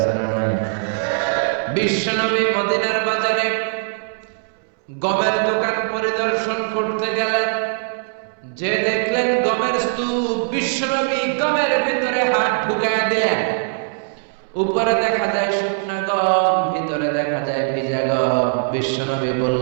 না নাই? বিশ্বনবী মদিনার বাজারে গমের দোকান পরিদর্শন করতে গেলেন, যে দেখলেন গমের স্তূপ। বিশ্বনবী গমের ভিতরে হাত ঢুকায় দিলেন। উপরে দেখা যায় শুকনা গম, ভিতরে দেখা যায় ভিজা গম। বিশ্বনবী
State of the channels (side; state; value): left; silent; 65 dB below the other